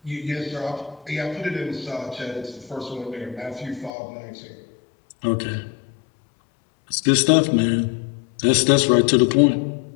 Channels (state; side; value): drops out; right; at 3.9 s